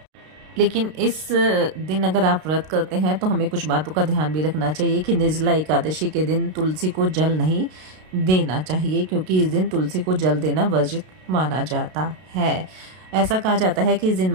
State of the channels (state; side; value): late; left; 32 ms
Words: लेकिन इस दिन अगर आप व्रत करते हैं तो हमें कुछ बातों का ध्यान भी रखना चाहिए कि निर्जला एकादशी के दिन तुलसी को जल नहीं देना चाहिए, क्योंकि इस दिन तुलसी को जल देना वर्जित माना जाता है। ऐसा कहा जाता है कि इस दिन